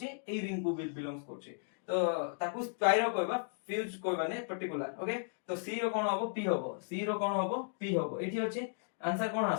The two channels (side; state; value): right; silent; digital silence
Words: एई रिंग को भी बिलोंग्स करछि तो ताकू स्पाइरो कहबा फ्यूज कहबा ने पर्टिकुलर ओके तो सी रो कोन हबो पी हबो सी रो कोन हबो पी हबो एठी अछि आंसर कोन